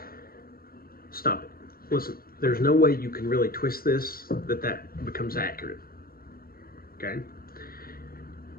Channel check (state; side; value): late; right; 0.43 ms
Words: Stop it. Listen, there's no way you can really twist this that becomes accurate. Okay?